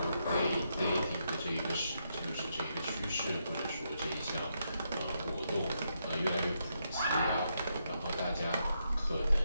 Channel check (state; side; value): inverted; both; correlation -0.80